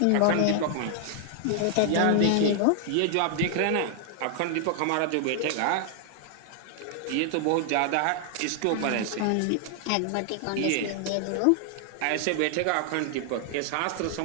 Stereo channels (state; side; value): different; both; correlation 0.00